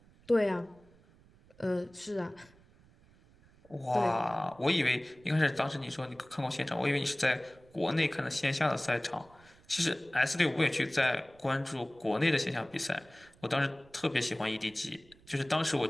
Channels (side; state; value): right; noise; rumble, 27 dB below the sound